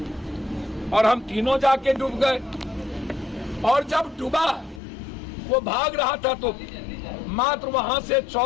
और हम तीनों जाके डूब गए? और जब डूबा, वो भाग रहा था, तो मात्र वहां से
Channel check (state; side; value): drops out; right; at 4.8 s